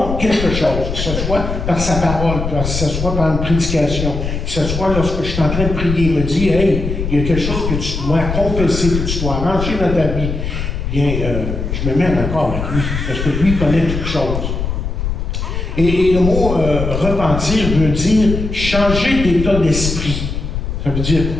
quelque chose, que ce soit par sa parole, que ce soit par une prédication, que ce soit lorsque je suis en train de prier, il me dit, hey, il y a quelque chose que tu dois confesser, que tu dois arranger dans ta vie. Bien, je me mets en accord avec lui, parce que lui connaît toutes choses. Et le mot repentir veut dire changer d'état d'esprit. Ça veut dire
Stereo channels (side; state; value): left; noise; rumble, 4 dB below the sound